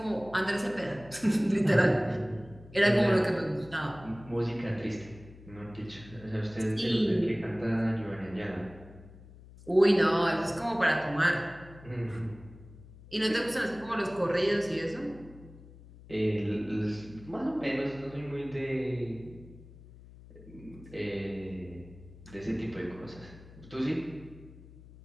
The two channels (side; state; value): left; noise; hum, 19 dB below the sound